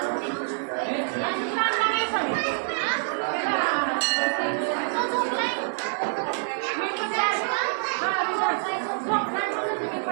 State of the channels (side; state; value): left; silent; digital silence